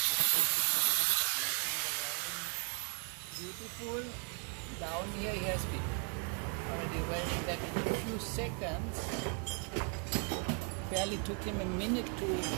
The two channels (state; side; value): quieter; left; 39.5 dB